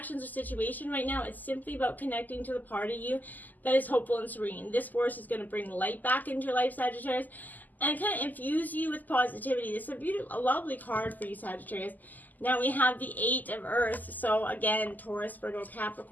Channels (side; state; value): right; late; 0.083 ms